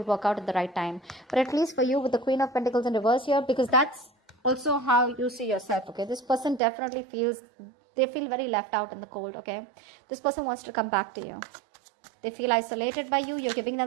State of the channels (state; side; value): drops out; left; at 6.6 s